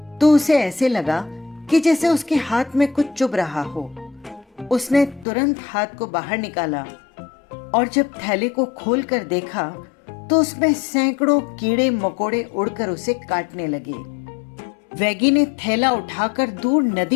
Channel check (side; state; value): right; drops out; at 5.2 s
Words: तो उसे ऐसे लगा कि जैसे उसके हाथ में कुछ चुभ रहा हो। उसने तुरंत हाथ को बाहर निकाला और जब थैले को खोलकर देखा तो उसमें सैकड़ों कीड़े मकोड़े उड़कर उसे काटने लगे। वैगी ने थैला उठाकर दूर